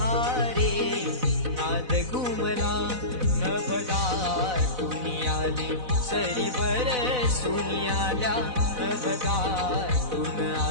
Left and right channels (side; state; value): left; late; 4.0 ms